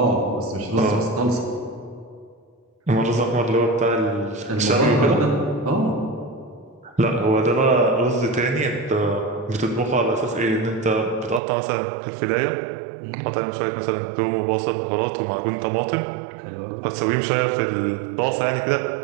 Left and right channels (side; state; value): left; drops out; at 11.4 s